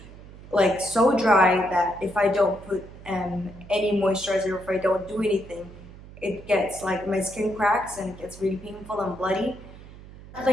Like so dry that if I don't put any moisturizer, or if I don't do anything, it gets like my skin cracks and it gets really painful and bloody.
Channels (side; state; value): right; noise; hum, 18 dB below the sound